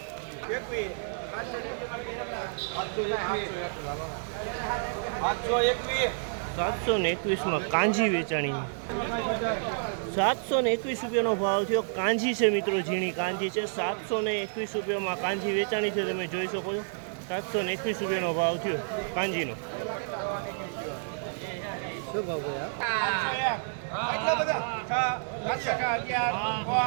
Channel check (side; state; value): left; silent; 58 dB below the other